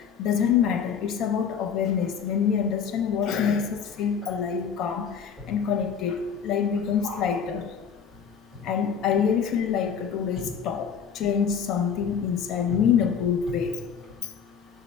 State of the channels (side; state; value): right; quieter; 7.1 dB